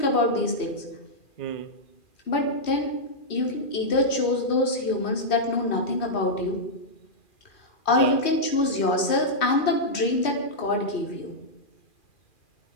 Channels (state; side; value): late; right; 2.4 ms